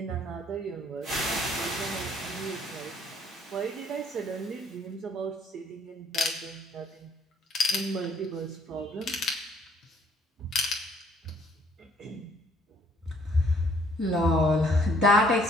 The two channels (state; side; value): normal; both; correlation 0.62